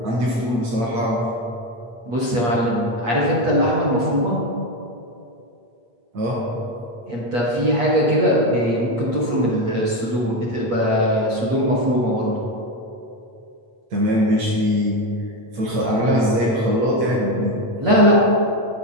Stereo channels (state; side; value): late; left; 8.4 ms